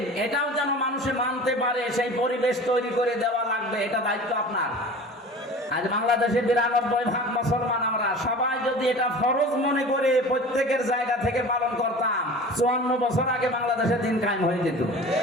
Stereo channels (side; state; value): both; normal; correlation 0.39